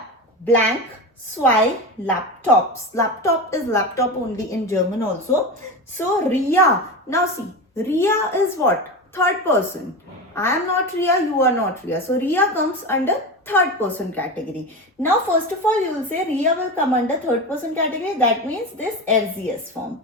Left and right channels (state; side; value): normal; both; correlation 0.23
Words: blank, zwei, laptops. Laptop is laptop only in German also. So Ria, now see, Ria is what? Third person. I am not Ria, you are not Ria. So Ria comes under third person category. Now first of all you will say Ria will come under third person category. That means this RZS form.